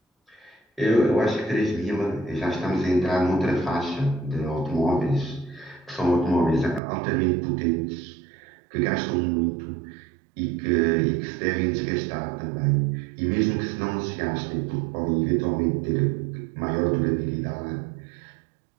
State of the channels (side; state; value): left; drops out; at 6.8 s